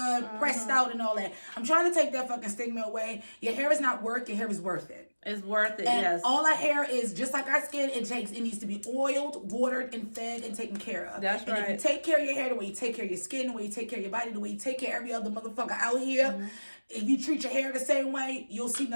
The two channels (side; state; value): both; inverted; correlation -1.00